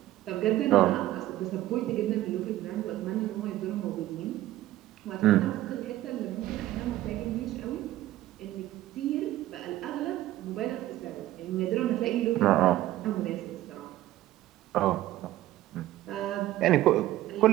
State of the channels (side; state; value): left; quieter; 14.9 dB